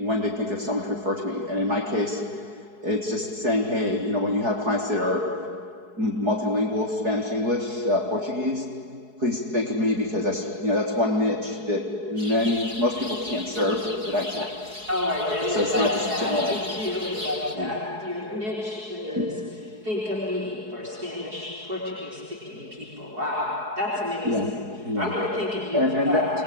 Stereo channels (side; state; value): left; late; 4.7 ms